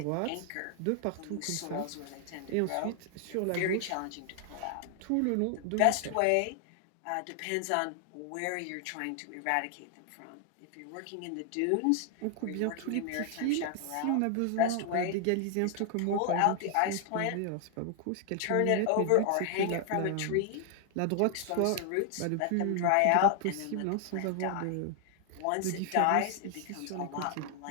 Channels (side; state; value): both; different; correlation 0.00